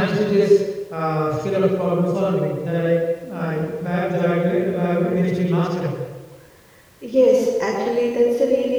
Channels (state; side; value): identical; both; correlation 1.00